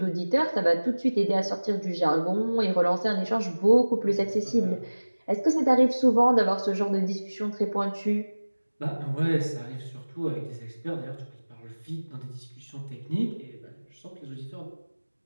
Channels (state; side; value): inverted; both; correlation -1.00